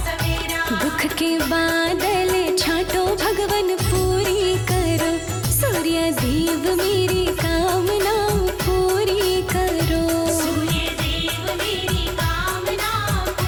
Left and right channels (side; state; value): both; identical; correlation 1.00